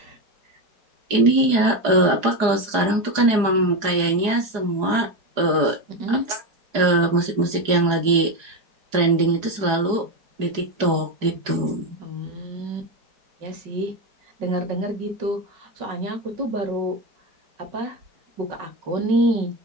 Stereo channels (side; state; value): left; late; 4.8 ms